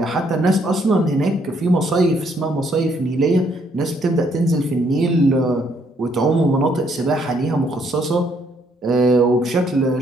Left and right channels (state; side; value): normal; both; correlation 0.69